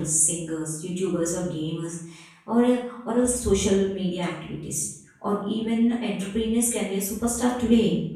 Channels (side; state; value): both; identical; correlation 1.00